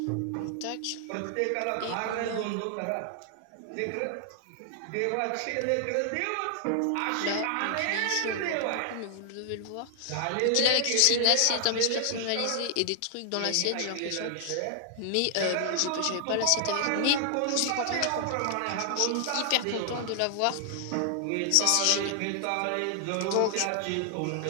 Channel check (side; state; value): both; different; correlation 0.00